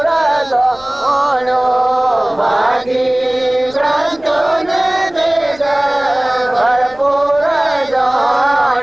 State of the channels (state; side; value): noise; left; rumble, 24 dB below the sound